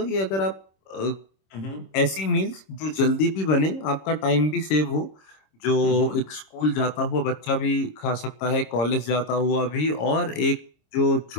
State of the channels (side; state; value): right; late; 26 ms